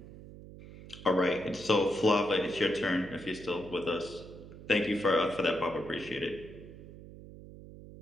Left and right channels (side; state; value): right; noise; hum, 16 dB below the sound